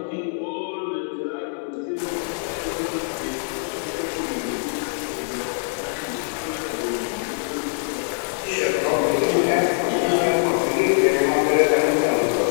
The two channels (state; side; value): silent; right; 63 dB below the other